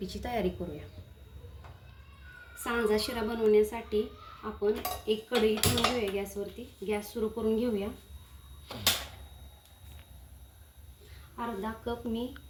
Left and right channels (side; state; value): both; identical; correlation 1.00